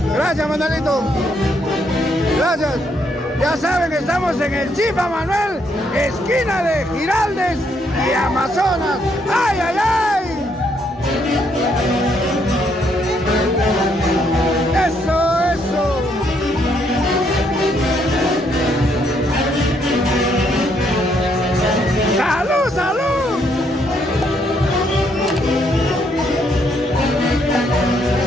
Gracias, Manuelito. Gracias. Ya saben que estamos en el Chifa Manuel, esquina de Giraldes y Amazonas. ¡Ay, ay, ay! Eso, eso. ¡Salud, salud!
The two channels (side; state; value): both; normal; correlation 0.72